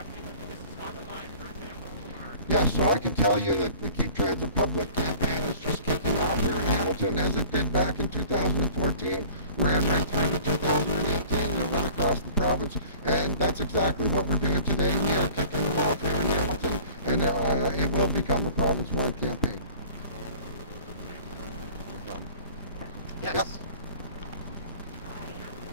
with the Mississauga line, for example? Or? Yes, so I can tell you that the Keep Transit Public campaign is just kicking off here in Hamilton, as it did back in 2014, ran right through to 2018, and it went across the province, and that's exactly what we're doing today. We are kicking it off here in Hamilton, and it will become a province-wide campaign. No problem. Yes. Yep.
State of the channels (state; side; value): inverted; both; correlation -0.48